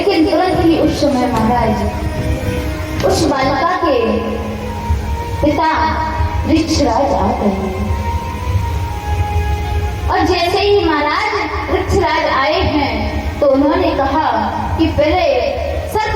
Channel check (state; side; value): identical; both; correlation 1.00